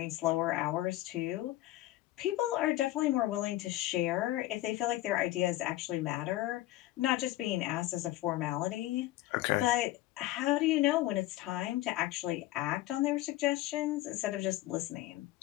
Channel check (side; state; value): right; quieter; 16.2 dB